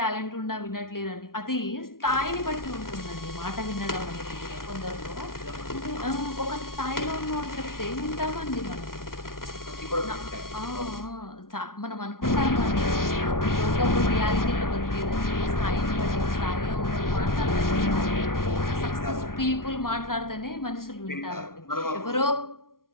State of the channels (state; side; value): late; right; 0.92 ms